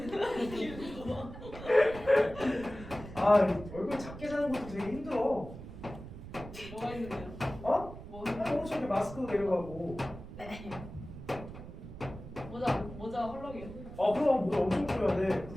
얼굴 작게 사는 것도 되게 힘들어. 뭐가 있는데요? 어? 뭐 엄청 이렇게 마스크가 내려가고. 모자 헐렁이요? 그럼 모자 엄청 줘야 돼.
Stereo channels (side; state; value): right; noise; rumble, 13 dB below the sound